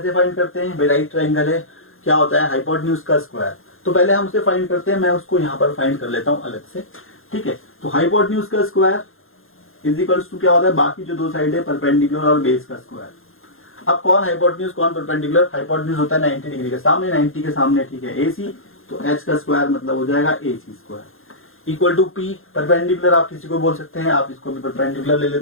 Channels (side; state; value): right; late; 0.60 ms